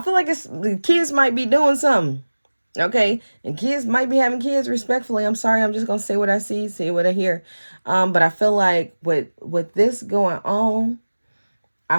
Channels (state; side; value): inverted; both; correlation -1.00